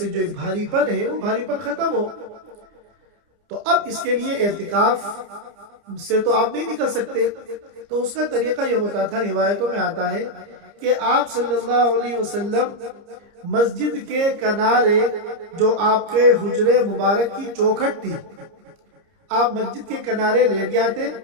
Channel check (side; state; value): left; late; 30 ms